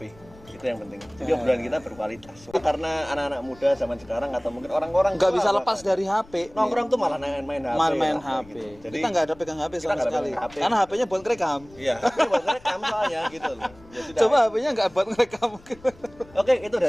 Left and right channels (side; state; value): left; noise; rumble, 24 dB below the sound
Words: Itu yang penting. Jadi obrolan kita berkualitas. Karena anak-anak muda zaman sekarang atau mungkin orang-orang Nggak tua bisa lepas bahkan, dari HP. nongkrong tuh malah main HP. Main ya, HP. gitu. Jadi Kita nggak ada pegang HP kita sama nggak sekali. pegang HP. Karena HP-nya buat ngerekam. iya, tapi buat rekam soalnya gitu loh. Ya sudah. Coba HP-nya nggak buat ngerekam. Oke, itu